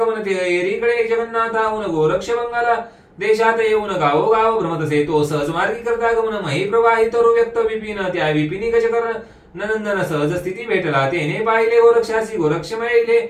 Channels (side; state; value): both; identical; correlation 1.00